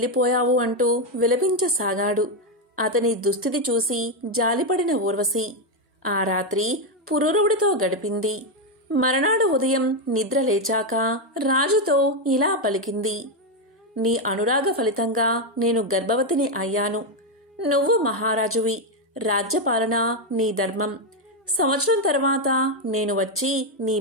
అంటూ విలపించసాగాడు. అతని దుస్థితి చూసి జాలిపడిన ఊర్వశి ఆ రాత్రి పురూరవుడితో గడిపింది. మరునాడు ఉదయం నిద్ర లేచాక రాజుతో ఇలా పలికింది, నీ అనురాగ ఫలితంగా నేను గర్భవతిని అయ్యాను. నువ్వు మహారాజువి. రాజ్యపాలన నీ ధర్మం. సంవత్సరం తర్వాత నేను వచ్చి నీ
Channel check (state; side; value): normal; both; correlation 0.05